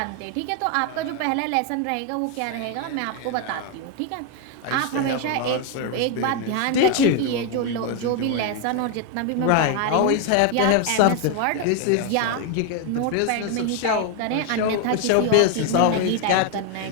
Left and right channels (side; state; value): both; different; correlation 0.01